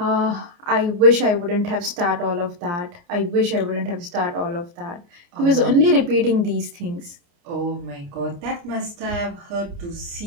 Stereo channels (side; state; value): left; late; 29 ms